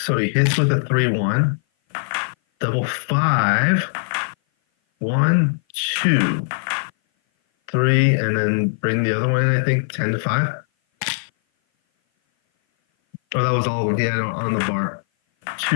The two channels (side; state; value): right; silent; 57 dB below the other